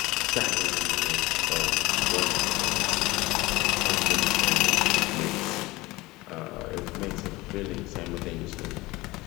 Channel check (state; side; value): quieter; right; 20.8 dB